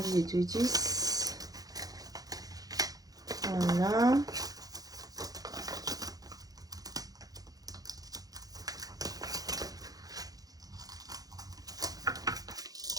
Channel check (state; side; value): late; left; 0.18 ms